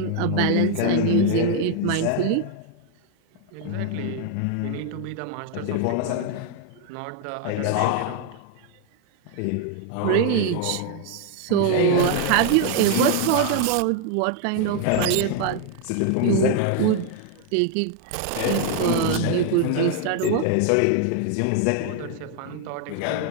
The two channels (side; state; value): both; different; correlation 0.00